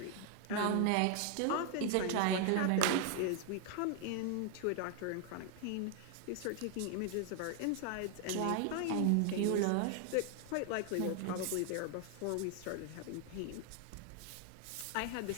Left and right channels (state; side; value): different; both; correlation 0.00